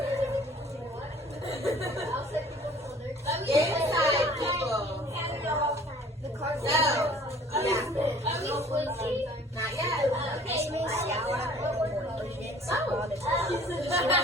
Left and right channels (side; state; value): both; normal; correlation 0.52